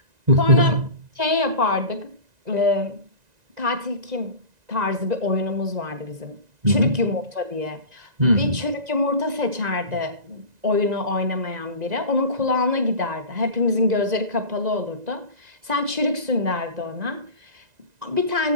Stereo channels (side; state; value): left; late; 1.9 ms